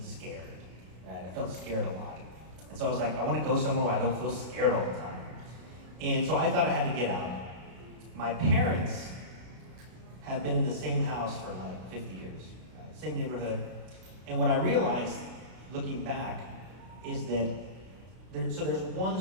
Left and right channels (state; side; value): late; left; 32 ms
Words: scared. Right? I felt scared a lot. And so I was like, I want to go somewhere where I don't feel scared all the time. And so I thought I had to get out. My parents have been in the same house for like 50 years, right? Same neighborhood. And what I realized, looking back, is that there's one